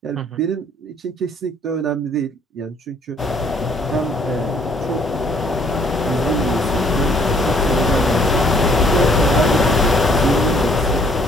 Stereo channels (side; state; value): both; normal; correlation 0.62